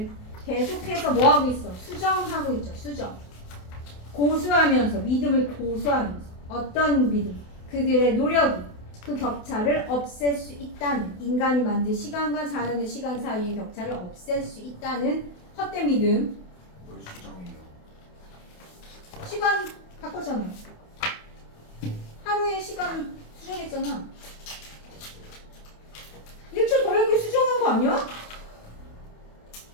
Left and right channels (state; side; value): late; right; 28 ms